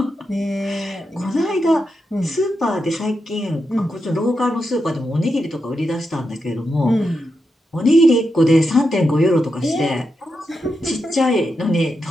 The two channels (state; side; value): normal; both; correlation 0.86